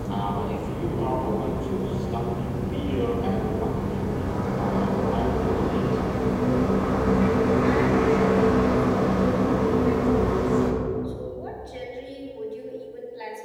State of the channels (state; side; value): identical; both; correlation 1.00